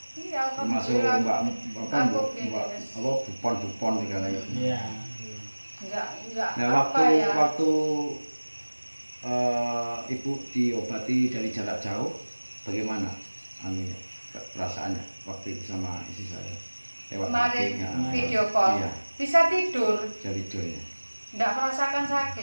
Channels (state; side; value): inverted; both; correlation -1.00